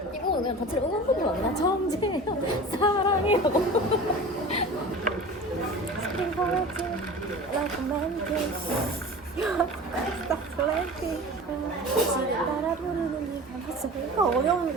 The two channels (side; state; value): both; normal; correlation 0.36